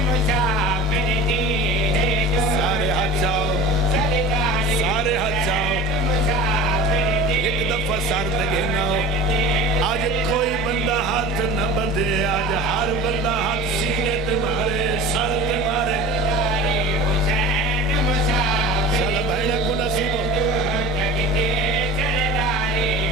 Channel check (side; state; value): both; normal; correlation 0.37